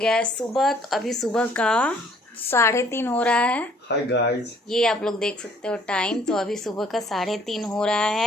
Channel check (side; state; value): both; normal; correlation 0.61